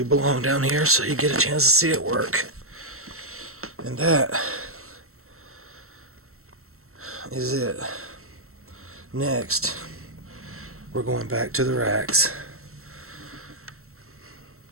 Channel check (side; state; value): left; late; 0.63 ms